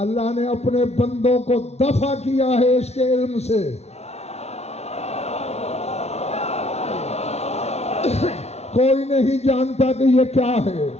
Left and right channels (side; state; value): right; late; 0.31 ms